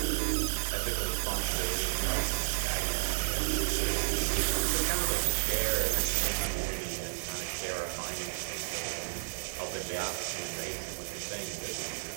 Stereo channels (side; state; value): left; silent; 56 dB below the other